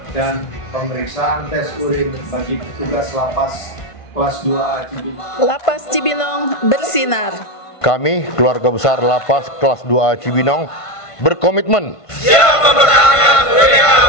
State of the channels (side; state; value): right; late; 1.5 ms